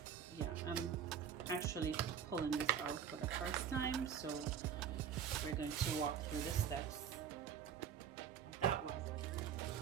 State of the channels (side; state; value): left; quieter; 8.1 dB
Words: yeah, I'm actually pulling this out for the first time, so we're going to walk through the steps of that one.